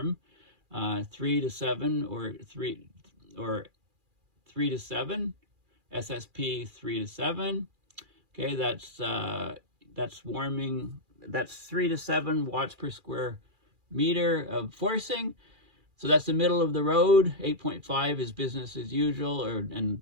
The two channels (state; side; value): late; left; 2.4 ms